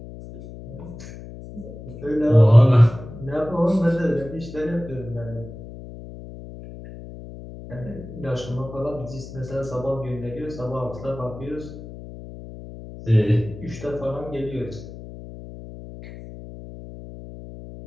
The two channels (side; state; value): left; noise; hum, 14 dB below the sound